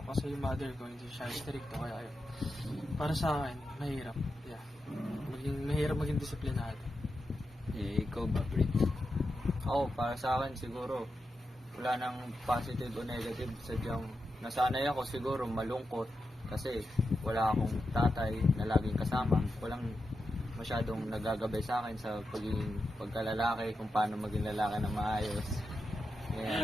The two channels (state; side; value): normal; both; correlation 0.88